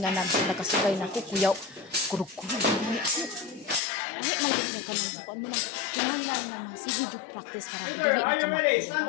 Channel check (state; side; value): drops out; right; at 3.8 s